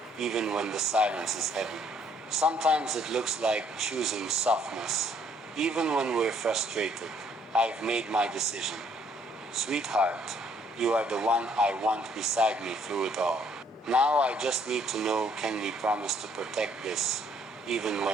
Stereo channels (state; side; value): normal; both; correlation 0.65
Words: even when the silence is heavy. Sometimes it looks like choosing softness, even when we're frustrated. I've made my decision. Sweetheart, you are the one I want beside me through it all. Now I just need to know, can we promise to protect this, even